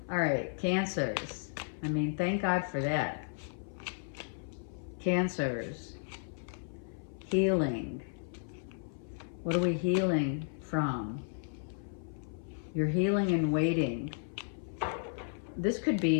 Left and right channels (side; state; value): right; silent; 55 dB below the other